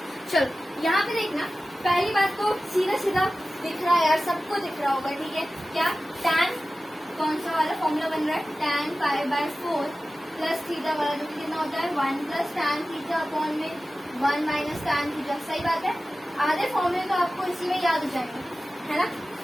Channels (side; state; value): both; normal; correlation 0.95